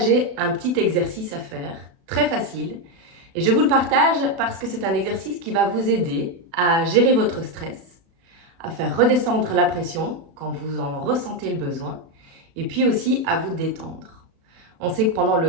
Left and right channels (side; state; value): left; late; 36 ms